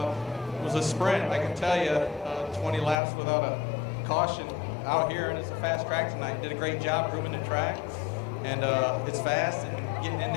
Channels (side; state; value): right; drops out; at 3.0 s